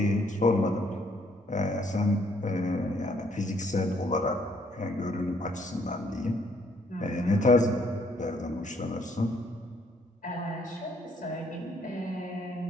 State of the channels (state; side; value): normal; both; correlation 0.67